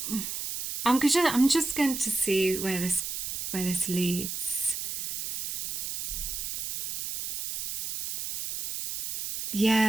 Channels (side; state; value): right; noise; hiss, 4 dB below the sound